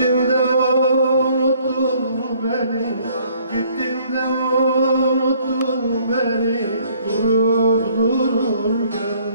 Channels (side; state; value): both; inverted; correlation -0.62